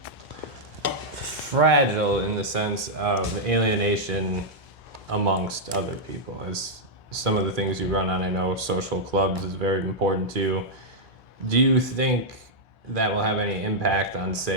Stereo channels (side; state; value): both; normal; correlation -0.06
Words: fragile in the sense of alienation amongst other people, as some of the things you run on, I know social clubs is very important to you. Do you think that will have any impact on,